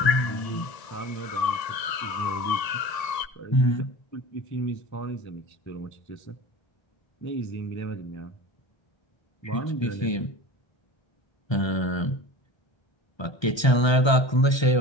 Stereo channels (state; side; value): late; right; 1.3 ms